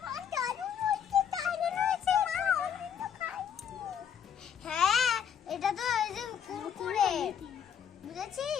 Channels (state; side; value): quieter; right; 8.2 dB